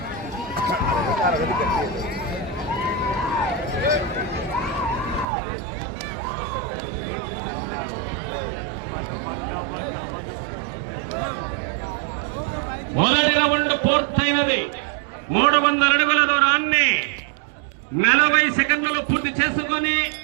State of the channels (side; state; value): left; drops out; at 5.2 s